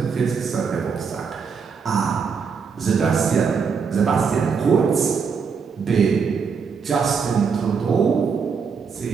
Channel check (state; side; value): quieter; left; 5.9 dB